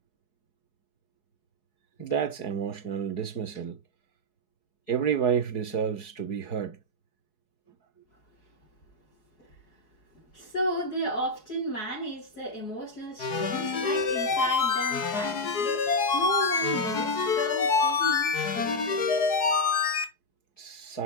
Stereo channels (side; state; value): right; late; 4.7 ms